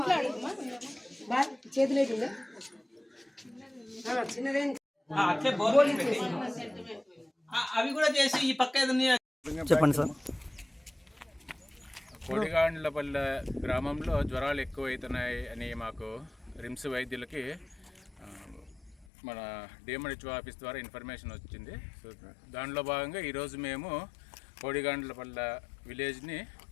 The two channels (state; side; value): drops out; right; at 19.1 s